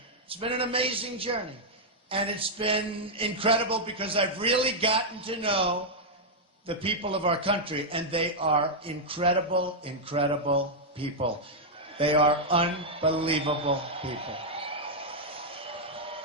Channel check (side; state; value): both; normal; correlation -0.04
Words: It's been an amazing journey. And it's been incredible because I've really gotten to know the people of our country, and they are incredible, incredible people. They are unbelievable people.